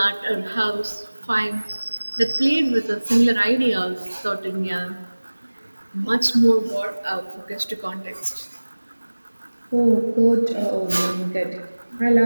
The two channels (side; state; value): both; inverted; correlation -1.00